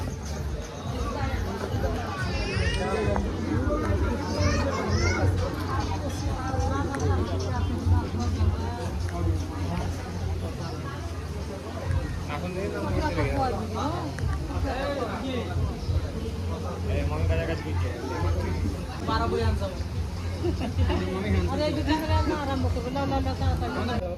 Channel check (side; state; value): both; identical; correlation 1.00